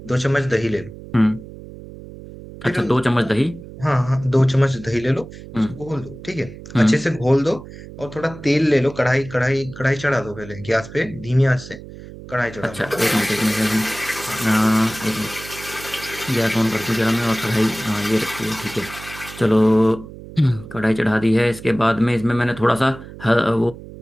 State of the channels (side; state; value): right; noise; hum, 15 dB below the sound